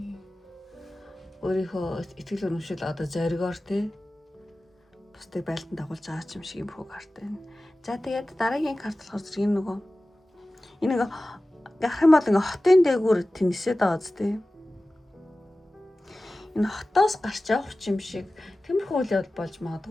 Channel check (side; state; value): both; normal; correlation 0.96